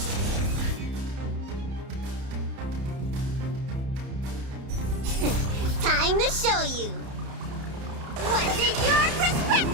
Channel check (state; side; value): late; left; 30 ms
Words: Time to show you. What's in your